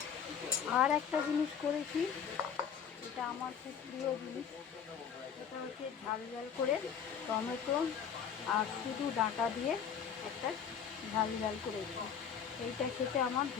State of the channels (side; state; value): right; quieter; 7.7 dB